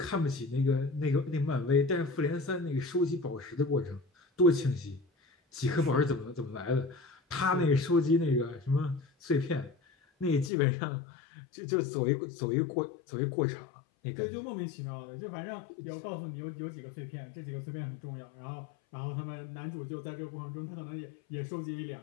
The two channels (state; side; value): drops out; right; at 10.5 s